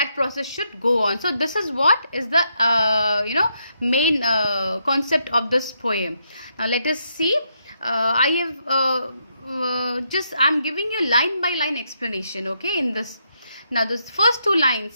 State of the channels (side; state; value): both; inverted; correlation -0.78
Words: process should go on. So this is what is the main concept of this poem. Now let us see. I'm giving you line by line explanation, okay, in this. Now the first two